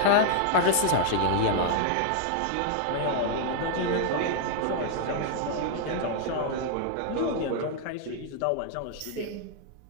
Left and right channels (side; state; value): both; different; correlation 0.00